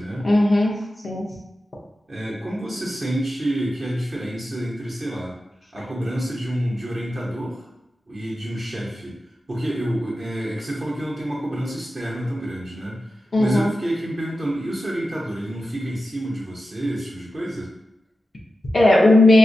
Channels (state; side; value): normal; both; correlation 0.92